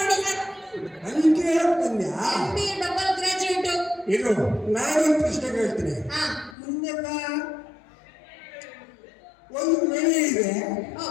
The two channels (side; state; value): right; drops out; at 6.6 s